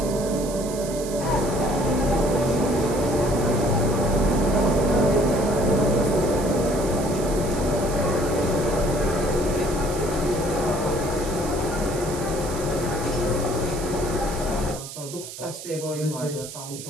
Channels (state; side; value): noise; right; hiss, 12 dB below the sound